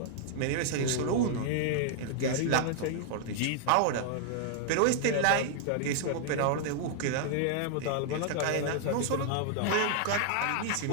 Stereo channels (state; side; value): different; both; correlation -0.01